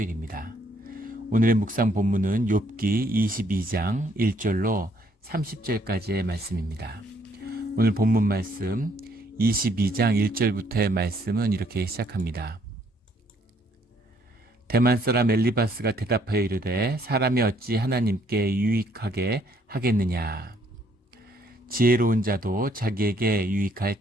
오늘의 묵상 본문은 욥기 22장 1절로 30절까지의 말씀입니다. 오늘 본문 말씀 22장 1절부터의 말씀은 이렇게 시작합니다. 대만 사람 엘리바스가 대답하여 이르되 사람이 어찌 하나님께 유익하게 하겠느냐. 지혜로운 자도 자기에게 유익할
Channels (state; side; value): normal; both; correlation 0.67